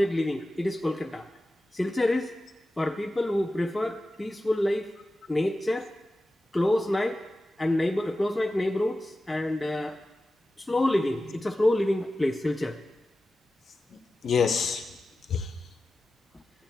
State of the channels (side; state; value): both; normal; correlation 0.94